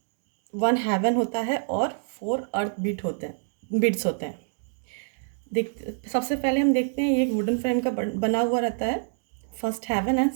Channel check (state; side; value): silent; left; digital silence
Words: 1 heaven होता है और 4 अर्थ बीट्स होते हैं. सबसे पहले हम देखते हैं, ये एक वुडन फ्रेम का बना हुआ रहता है. फर्स्ट हेवन एंड